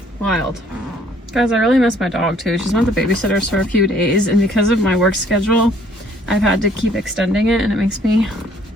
Wild. Guys, I really miss my dog too. She's been with the babysitters for a few days, and because of my work schedule, I've had to keep extending it, and it makes me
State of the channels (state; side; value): normal; both; correlation 0.61